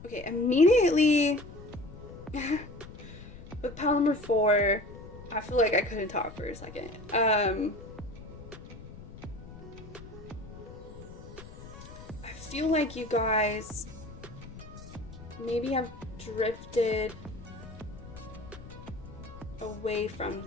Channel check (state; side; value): noise; left; rumble, 15 dB below the sound